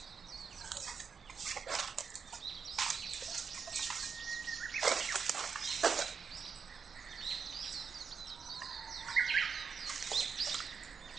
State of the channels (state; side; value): quieter; left; 6.1 dB